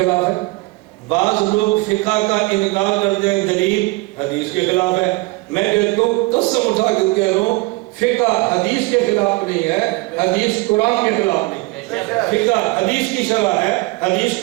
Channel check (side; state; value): left; quieter; 23.2 dB